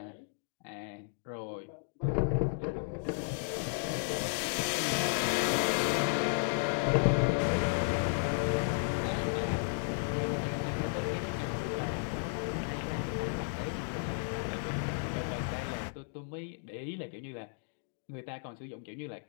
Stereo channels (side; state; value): right; silent; digital silence